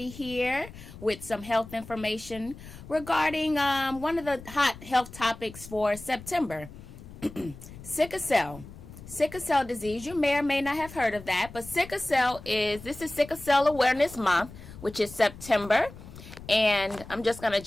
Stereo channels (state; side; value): noise; left; rumble, 16 dB below the sound